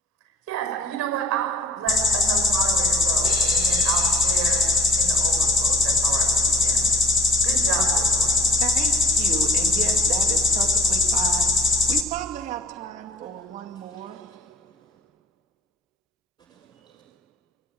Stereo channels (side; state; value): both; normal; correlation 0.46